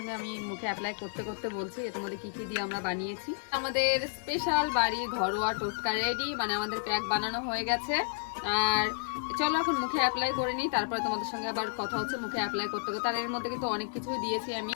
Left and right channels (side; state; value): right; silent; digital silence